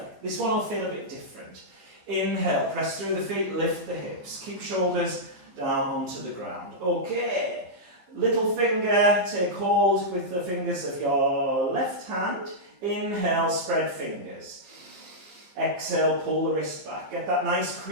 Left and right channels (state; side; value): late; left; 14 ms